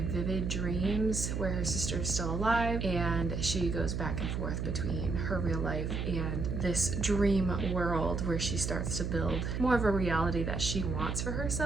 dreams where her sister is still alive, and she goes back and forth between her real life and this dream world where she starts to build more of a reality that she wants for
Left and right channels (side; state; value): right; noise; hum, 2 dB below the sound